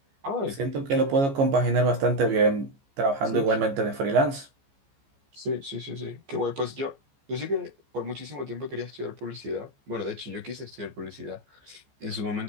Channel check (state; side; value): late; left; 14 ms